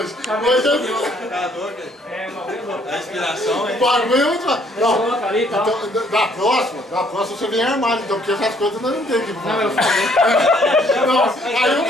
É, uma vez louca. A inspiração, hein? O bagulho é muito... Coloca ali e tal. Então, da próxima você vem armado, então, porque essas coisas nós não tem aqui. Não, eu falei.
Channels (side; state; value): both; normal; correlation 0.64